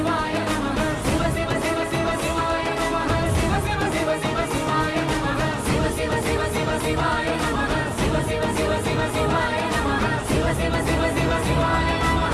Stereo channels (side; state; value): both; identical; correlation 1.00